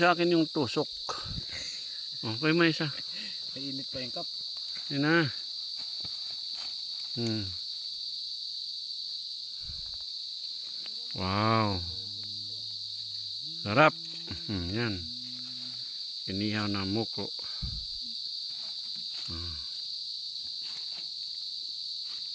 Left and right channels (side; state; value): both; identical; correlation 1.00